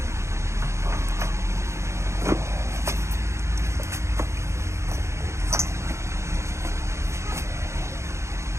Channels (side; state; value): left; late; 0.14 ms